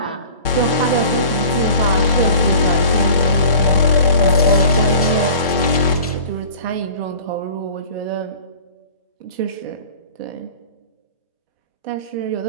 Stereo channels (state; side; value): inverted; both; correlation -0.42